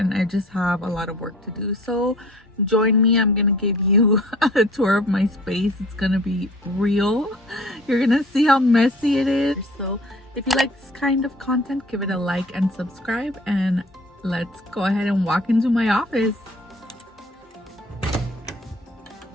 I just have a lot of work to do. So join me. I'm gonna give you a tour of my space. It's gonna be real. You're gonna see how messy it is. So if you like this kind of content, give it a like and subscribe, and let's go ahead and walk into my office.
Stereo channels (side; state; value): both; normal; correlation 0.49